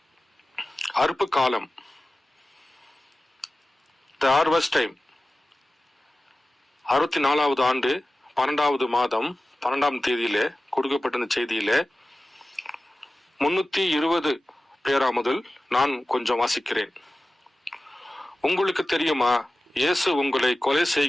அறுப்பு காலம், தி ஹார்வெஸ்ட் டைம், 64வது ஆண்டு 12வது மாதம் 12ஆம் தேதியிலே கொடுக்கப்பட்ட செய்தியிலே 320 பேரா முதல் நான் கொஞ்சம் வாசிக்கிறேன். உங்களுக்கு தெரியுமா, இயேசு உங்களை கொலை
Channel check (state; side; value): normal; both; correlation 0.96